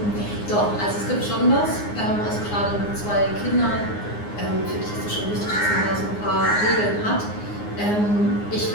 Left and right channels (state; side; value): late; right; 9.7 ms